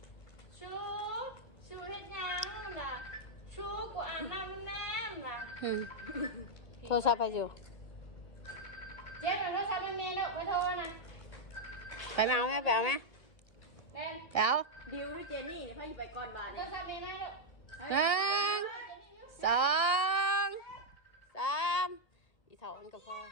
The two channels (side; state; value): right; late; 1.8 ms